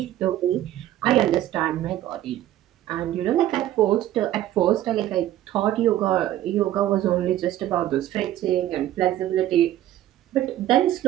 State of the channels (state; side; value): quieter; left; 13.2 dB